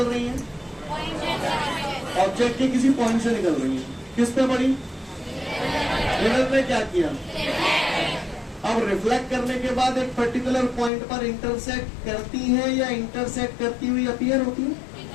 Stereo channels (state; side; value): drops out; right; at 10.9 s